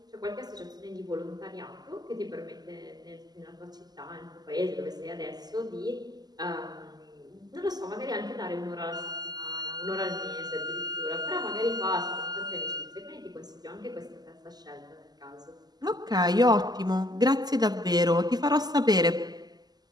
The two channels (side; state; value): left; late; 0.20 ms